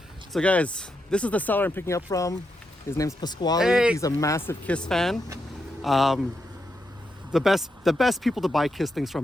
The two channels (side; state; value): both; normal; correlation 0.84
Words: So guys, this is the seller I'm picking up from. His name's Pasquale. Hey. He's a massive Kiss fan. The best people to buy Kiss things